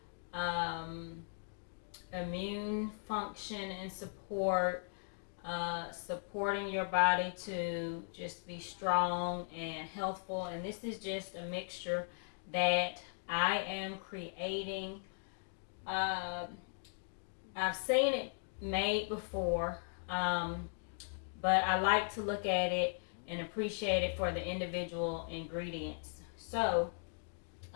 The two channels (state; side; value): silent; right; digital silence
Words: um, immune function and support, supporting your body to just be strong and healthful. And this is just a mixture that I am creating. Uh, I've seen it made before, but I like to look at it and appreciate it for the individual ingredients. So